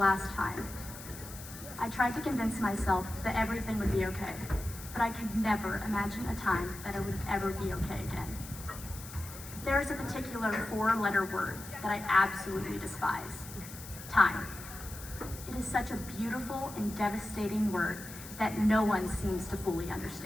time. I tried to convince myself that everything would be okay, but I could never imagine a time that it would ever be okay again. There is a particular four-letter word that I absolutely despise: time. It is such a beautiful and devastating word that no one seems to fully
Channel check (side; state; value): left; noise; hiss, 14 dB below the sound